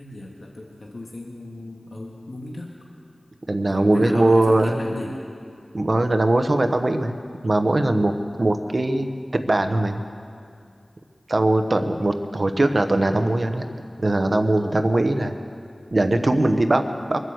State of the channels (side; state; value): both; normal; correlation 0.98